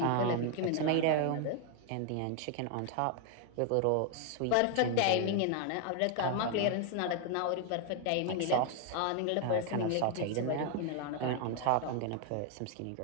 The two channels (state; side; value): different; both; correlation 0.00